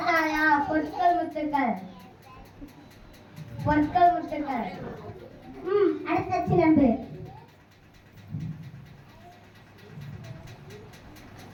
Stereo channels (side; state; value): both; identical; correlation 1.00